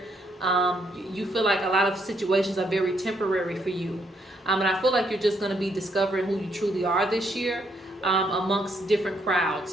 You feel like a lot of situations are very temporary for you. And I feel like you're just going to be discovering who you truly are this year amongst different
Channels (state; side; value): normal; both; correlation 0.73